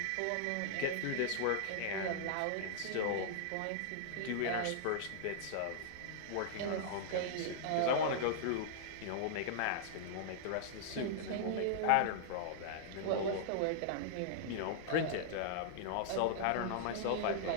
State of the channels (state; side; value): different; both; correlation -0.02